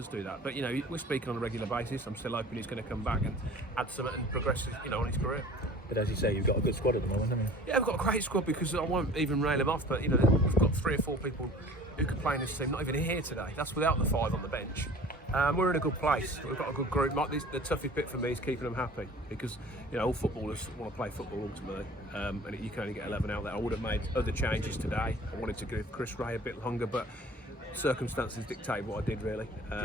do that. But you know, we're speaking on a regular basis. I'm still hoping he's going to come back and add something and progress, you know, on his career. But as you say, you've got a good squad at the moment, haven't you? Yeah, we've got a great squad because I won't even rail him off, but you know, we've got 3 or 4 people who can play in this team, not even here today. That's without the 5 on the bench. We're in a good place. We've got a good group. The toughest bit for me is keeping them happy because you know all footballers want to play football ultimately, and you can only get 11 out there. I would have made other changes today. I wanted to give Chris Ray a bit longer, but circumstances dictate what I did really,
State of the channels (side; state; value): both; normal; correlation 0.45